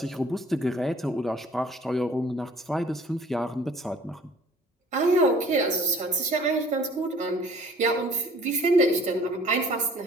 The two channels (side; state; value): both; normal; correlation 0.53